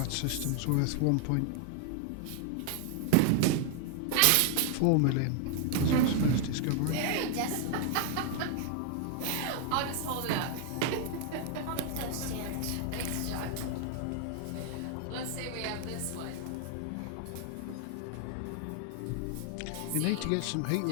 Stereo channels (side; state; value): both; different; correlation 0.00